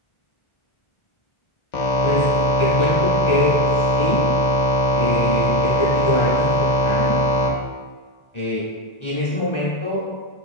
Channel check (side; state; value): right; late; 1.4 ms